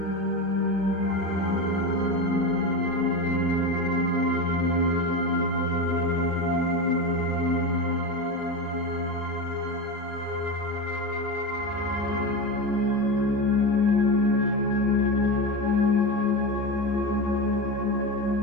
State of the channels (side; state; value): both; normal; correlation 0.21